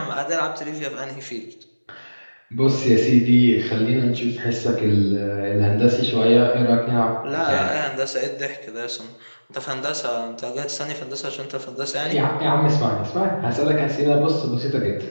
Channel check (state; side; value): inverted; both; correlation -1.00